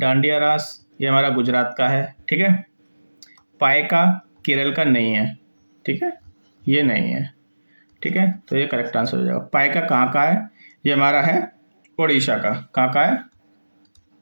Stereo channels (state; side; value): inverted; both; correlation -1.00